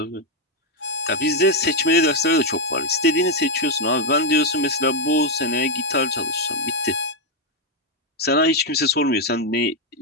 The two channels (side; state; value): both; normal; correlation 0.03